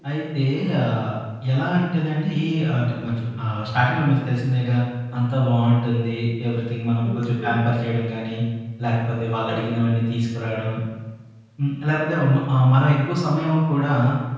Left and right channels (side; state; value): both; identical; correlation 1.00